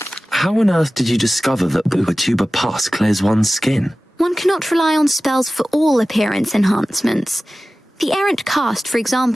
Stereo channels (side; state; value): both; normal; correlation 0.96